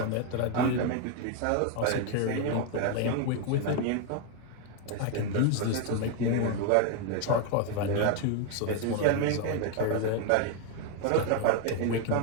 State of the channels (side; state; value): both; different; correlation 0.01